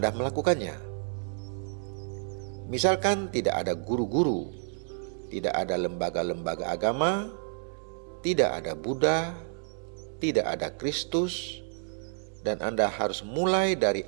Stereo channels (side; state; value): left; silent; 58 dB below the other